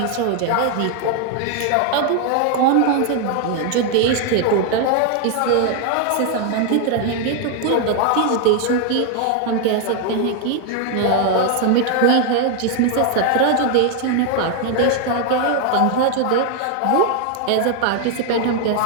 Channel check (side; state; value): both; different; correlation 0.00